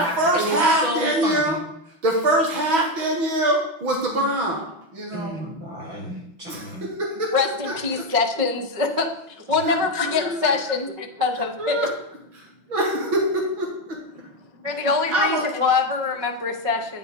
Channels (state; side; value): late; left; 6.1 ms